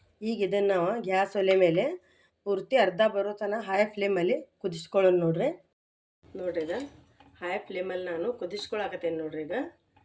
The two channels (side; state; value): both; identical; correlation 1.00